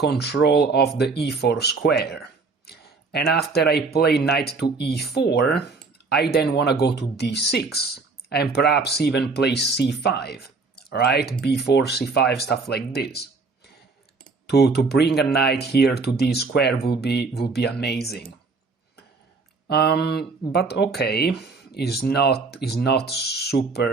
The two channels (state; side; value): quieter; left; 4.2 dB